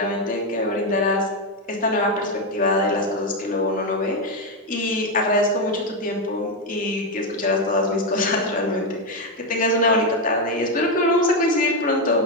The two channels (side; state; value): both; normal; correlation 0.07